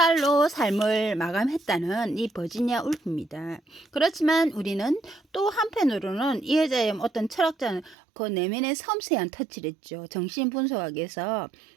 삶을 마감했다는 이 버지니아 울프입니다. 그렇지만 우리는 또 한편으로는 이 여자의 어떤 철학자는 그 내면의 섬세한 터치를 했죠. 정신분석학에서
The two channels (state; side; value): drops out; left; at 8.0 s